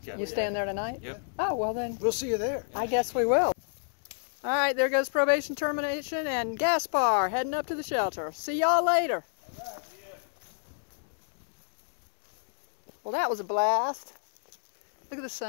Gap, You staying there tonight? Yep. Oh, well then. We'll see you there. I guess we will. All right, there goes probation termination and Gaspar heading up to the shelter. See y'all later. Well, that was a blast. Look at the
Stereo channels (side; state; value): right; silent; digital silence